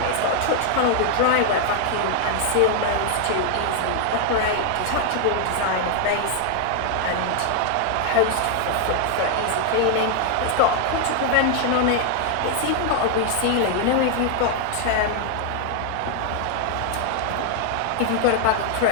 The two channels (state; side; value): different; both; correlation 0.00